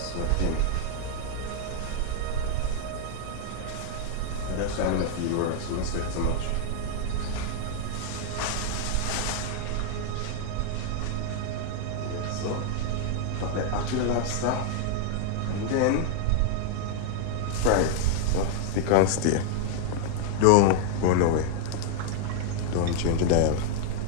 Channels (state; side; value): different; both; correlation -0.01